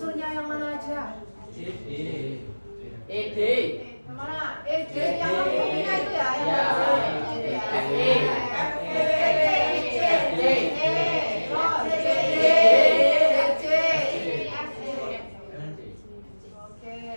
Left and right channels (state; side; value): inverted; both; correlation -1.00